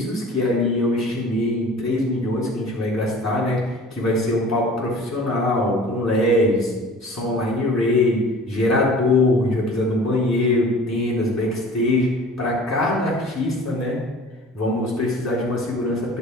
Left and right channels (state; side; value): normal; both; correlation 0.44